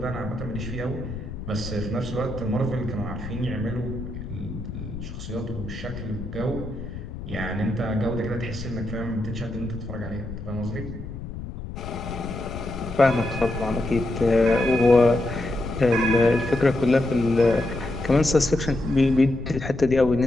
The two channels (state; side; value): noise; left; rumble, 9 dB below the sound